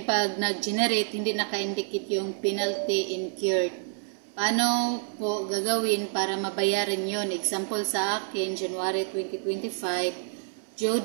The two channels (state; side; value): silent; left; 59 dB below the other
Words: pag nag-generate, hindi naka-indicate yung penalty incurred. Paano po gagawin para mabayaran yon? Example sa akin, January 2025, due